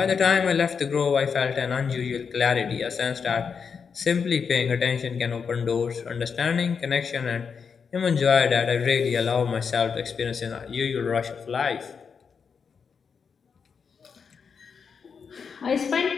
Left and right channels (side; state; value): right; quieter; 6.1 dB